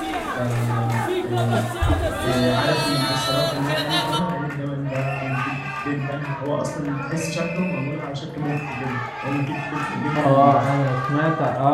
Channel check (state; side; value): identical; both; correlation 1.00